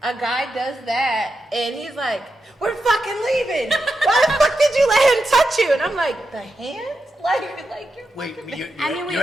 A guy does that, and he's like, "We're fucking leaving. Why the fuck did you let him touch you?" And I'm like, "The hand? Like you're wait, fucking- you're, I mean, we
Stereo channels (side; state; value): both; normal; correlation 0.88